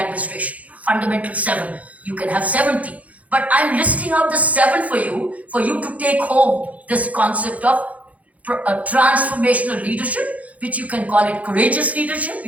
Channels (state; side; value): late; left; 0.070 ms